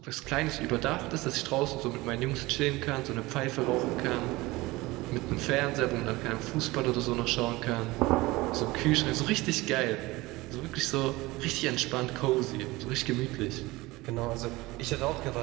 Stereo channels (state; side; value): quieter; left; 20.8 dB